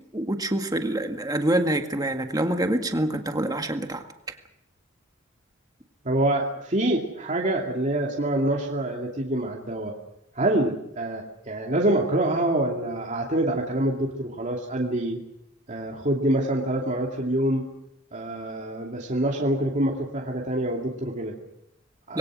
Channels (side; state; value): both; normal; correlation 0.43